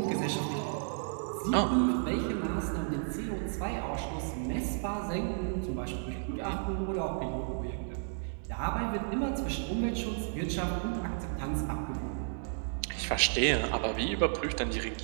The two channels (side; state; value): left; silent; digital silence